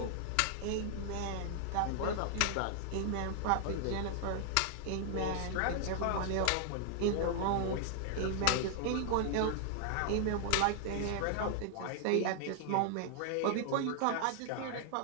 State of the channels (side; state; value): both; different; correlation 0.00